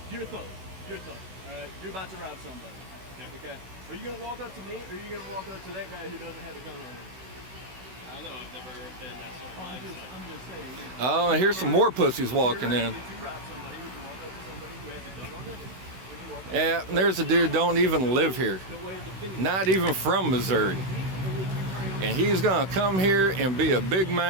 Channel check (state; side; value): late; left; 16 ms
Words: you're a thug. All right, you're about to rob somebody. Okay. Are you gonna walk up to me, or are you gonna walk up to that guy who doesn't have a gun on him? I don't know. I've never been that sort of mindset. I'm just saying. Oh, and here's some more pussies walking in. If you rob somebody, would you walk up to somebody who has a gun on them? Would you walk up Yeah, and there's a dude don't even live here. Not even from Missouri. And he's gonna come here and be a big